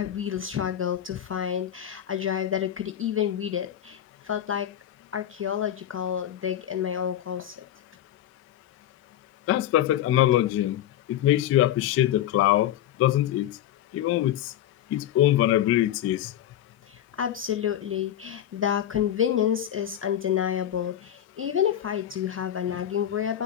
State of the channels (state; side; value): quieter; right; 11.4 dB